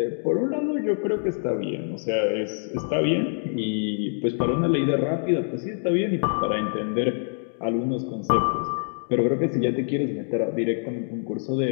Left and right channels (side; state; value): right; silent; digital silence